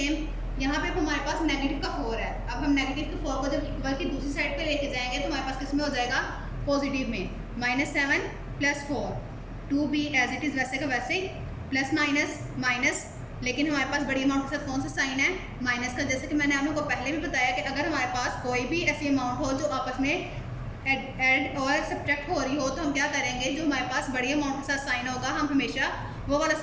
यहाँ पे हमारे पास नेगेटिव का 4 है, अब हम नेगेटिव के 4 को जब इक्वल की दूसरी साइड पे लेके जाएंगे तो हमारे पास किस में हो जाएगा, पॉजिटिव में। -7 plus 4, 2b as it is वैसे का वैसे ही, प्लस माइनस माइनस, लेकिन हमारे पास बड़ी अमाउंट के साथ कौन सा साइन है, माइनस का। जैसे कि मैंने आप लोगों को पहले भी बताया कि अगर हमारे पास कोई भी ऐसी अमाउंट हो जो आपस में ऐड और सब्ट्रैक्ट हो रही हो तो हम क्या करेंगे, जो हमारे पास बड़ी अमाउंट के साथ साइन होगा हम हमेशा वो वाला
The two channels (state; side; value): identical; both; correlation 1.00